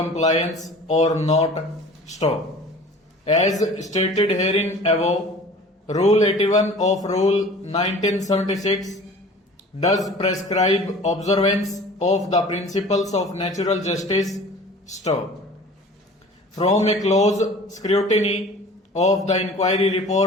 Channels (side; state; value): both; normal; correlation 0.44